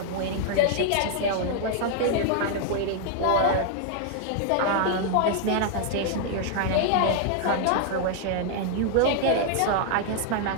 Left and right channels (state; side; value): different; both; correlation 0.00